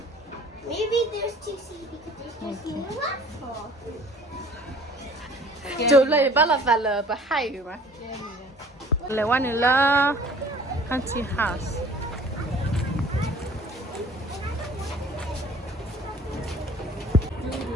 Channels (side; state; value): both; normal; correlation 0.51